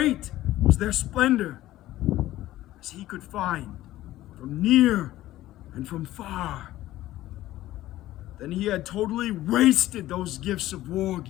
was their splendor, as he could find from near and from far. Then he had totally wasted those gifts of war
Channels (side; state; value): right; quieter; 15.2 dB